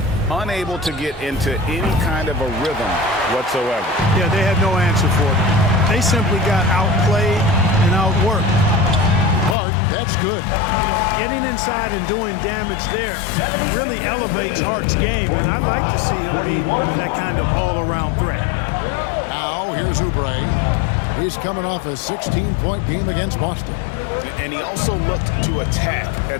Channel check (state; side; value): drops out; right; at 9.6 s